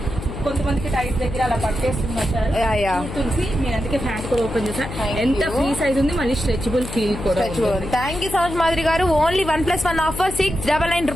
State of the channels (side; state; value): left; noise; hum, 8 dB below the sound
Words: కొంతమందికి టైట్ దగ్గర అలా పట్టేస్తున్నారు తులసి. నేను అందుకే ప్యాంట్ కూడా ఓపెన్ చేశాను. ఎంత ఫ్రీ సైజ్ ఉంది, మళ్ళీ స్ట్రెచబుల్ ఫీల్ కూడా. Thank you so much Madhuri గారు. ఓన్లీ 1+1 ఆఫర్ 699